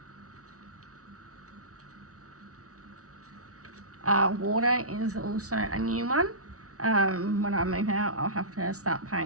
Water is also a new one. When I move out, I'll have to start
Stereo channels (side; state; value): left; late; 0.66 ms